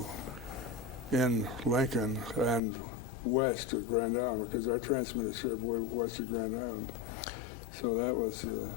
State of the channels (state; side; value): drops out; right; at 2.6 s